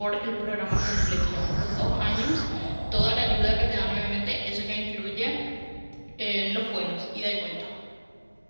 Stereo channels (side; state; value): both; inverted; correlation -1.00